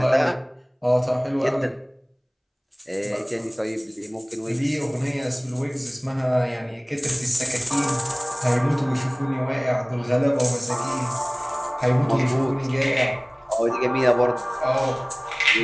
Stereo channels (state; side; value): identical; both; correlation 1.00